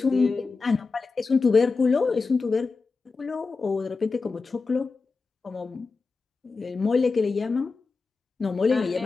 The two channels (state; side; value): quieter; right; 4.3 dB